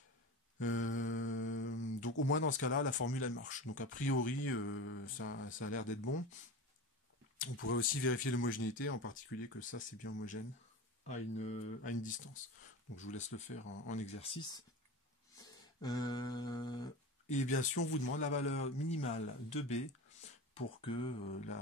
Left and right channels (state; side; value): normal; both; correlation 0.29